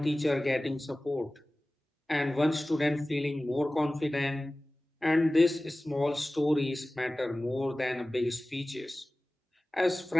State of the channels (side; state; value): both; normal; correlation 0.97